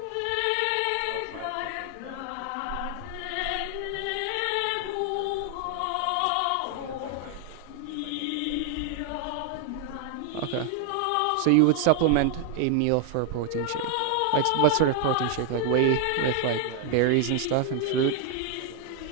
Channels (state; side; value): different; both; correlation 0.00